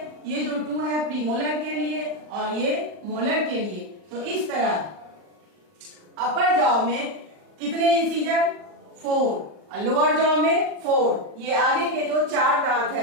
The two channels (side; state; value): left; late; 40 ms